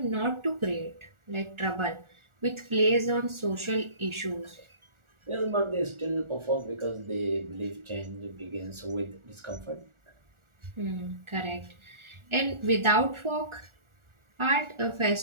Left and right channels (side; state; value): left; late; 1.4 ms